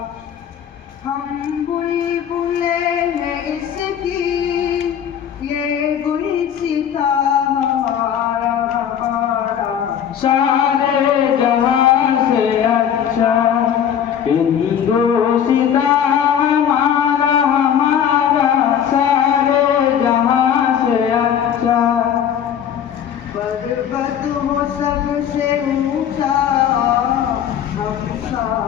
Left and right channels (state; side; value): quieter; right; 9.0 dB